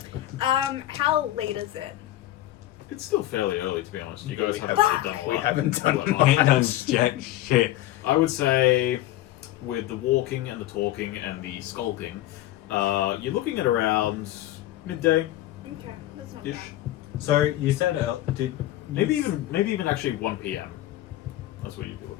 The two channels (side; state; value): right; quieter; 14.8 dB